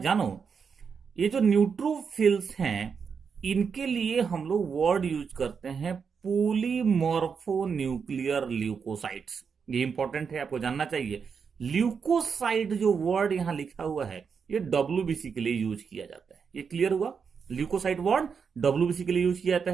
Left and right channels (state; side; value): quieter; left; 6.1 dB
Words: ये जो न्यूट्रोफिल्स हैं इनके लिए हम लोग वर्ड यूज करते हैं पॉलीमॉर्फोन्यूक्लियर ल्यूकोसाइट्स। ये इंपॉर्टेंट है, आपको जानना चाहिए। ल्यूकोसाइट जो वर्ड यहां लिखा हुआ है ये WBC के लिए यूज किया जाता है। ये क्लियर हुआ, ल्यूकोसाइट वर्ड WBC के लिए यूज किया जाता